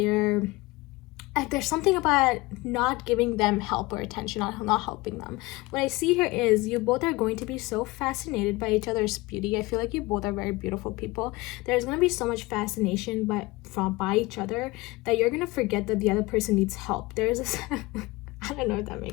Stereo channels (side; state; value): right; quieter; 21.9 dB